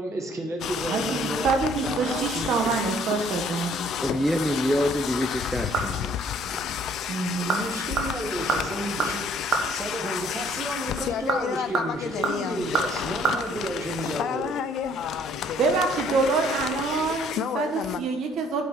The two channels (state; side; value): normal; both; correlation 0.61